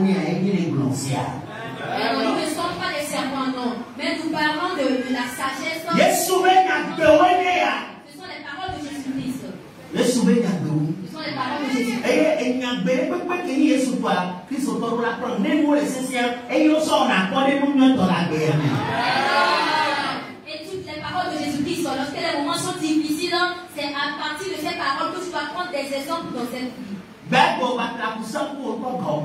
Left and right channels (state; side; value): identical; both; correlation 1.00